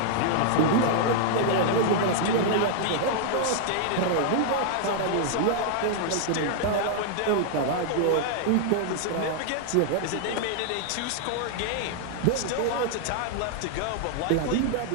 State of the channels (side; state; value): both; different; correlation -0.01